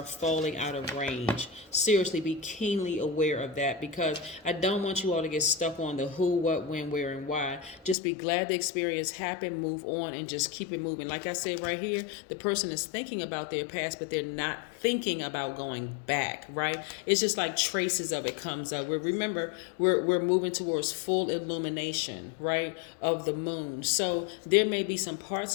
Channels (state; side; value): drops out; right; at 8.0 s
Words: falling out of range. Seriously, be keenly aware of that, because I don't want you all to get stuck on the who, what, when, where, and why. Just be glad the experience happened, move on, and just keep it moving. Like I said right here, the person is thinking about their past, but they're not thinking about going back, right? It's just like traces of it comes up. Remember, we're moving towards full illumination, right, of the moon. So there may be some